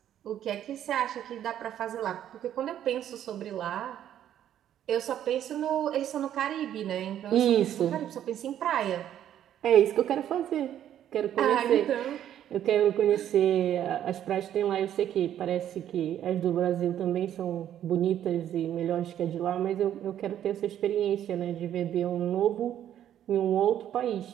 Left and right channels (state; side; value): quieter; left; 10.8 dB